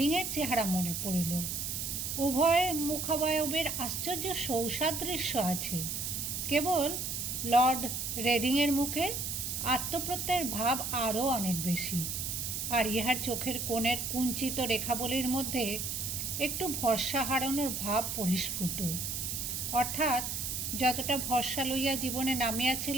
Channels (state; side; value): noise; right; hiss, 3 dB below the sound